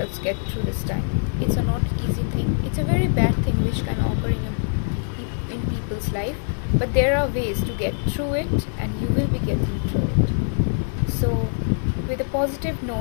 get through this time. It's a not easy thing. It's a very bad thing which can occur in people's life, but there are ways to get through it and you will be getting through it. So with a positive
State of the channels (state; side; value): silent; right; digital silence